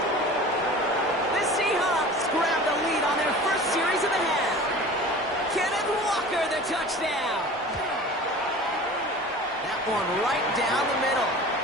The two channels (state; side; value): normal; both; correlation 0.39